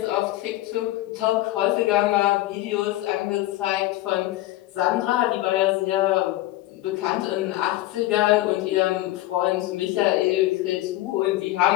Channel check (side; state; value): right; quieter; 16.6 dB